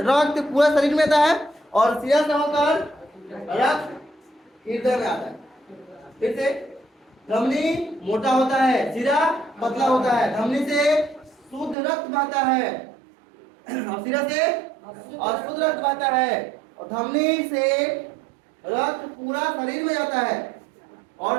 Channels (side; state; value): left; drops out; at 11.8 s